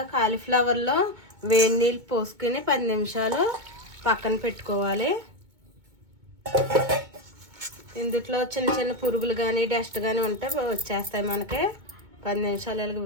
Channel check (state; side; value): late; left; 2.2 ms